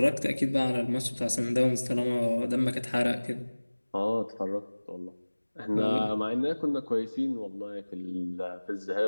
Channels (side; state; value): both; inverted; correlation -1.00